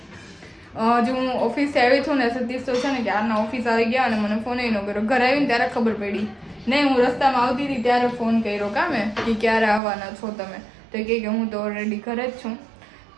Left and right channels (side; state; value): left; drops out; at 9.8 s